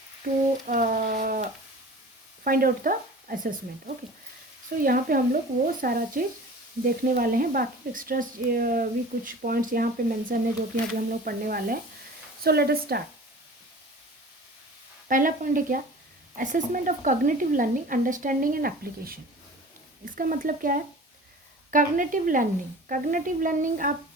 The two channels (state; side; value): normal; both; correlation 0.40